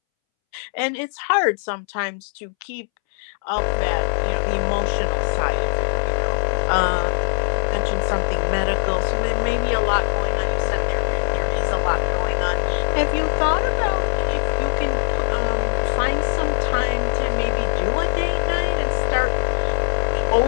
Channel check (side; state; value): right; silent; 65 dB below the other